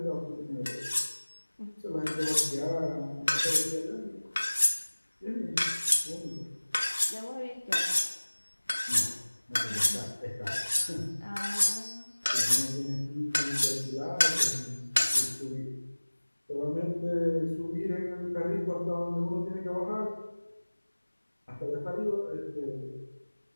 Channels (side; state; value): both; inverted; correlation -1.00